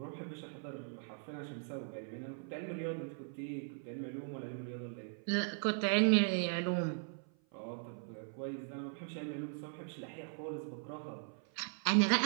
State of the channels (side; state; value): left; silent; 52 dB below the other